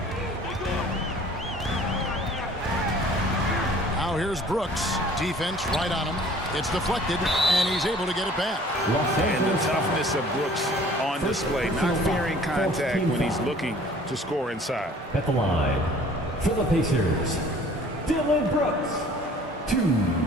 Now here's Brooks. Defense right on him. It's deflected, and he's able to get it back. And the toughness of Brooks on display, not fearing contact when he's looking to score inside. At the line, for the Pacers, Dillon Brooks. 2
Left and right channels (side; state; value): both; normal; correlation 0.51